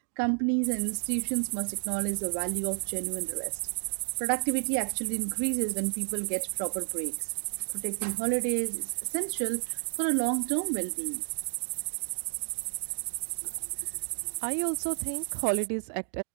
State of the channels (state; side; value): silent; left; digital silence